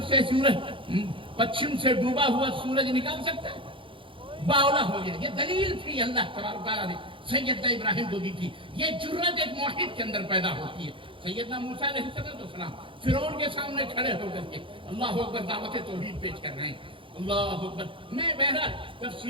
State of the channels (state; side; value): late; left; 0.25 ms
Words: سے سورج پچھم سے ڈوبا ہوا سورج نکال سکتا ہے؟ باولا ہو گیا۔ یہ دلیل تھی اللہ تبارک تعالیٰ نے سیدنا ابراہیم کو دی تھی۔ یہ جرت ایک موحد کے اندر پیدا ہوتی ہے۔ سیدنا موسیٰ علیہ السلام فرعون کے سامنے کھڑے ہو کر کے اللہ اکبر دعوت توحید پیش کر رہے ہیں، اللہ اکبر. میں بہرحال